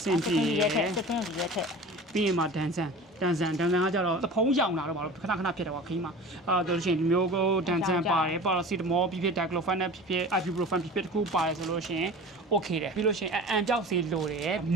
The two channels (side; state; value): both; normal; correlation 0.37